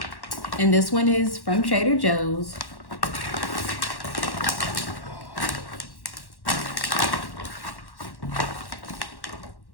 And this one is from Trader Joe's.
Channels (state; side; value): late; right; 1.1 ms